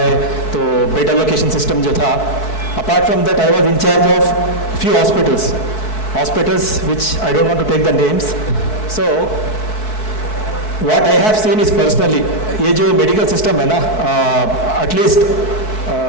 है तो बेड एलोकेशन सिस्टम जो था. Apart from that I was in charge of few hospitals which I don't want to take the names. So what I have seen is personally, ये जो मेडिकल सिस्टम है ना, at least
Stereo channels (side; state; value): right; late; 4.6 ms